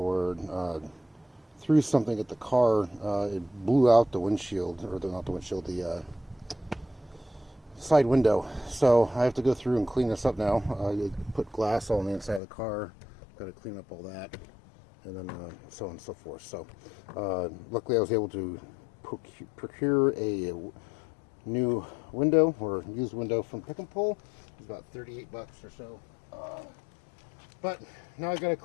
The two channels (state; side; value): drops out; right; at 12.4 s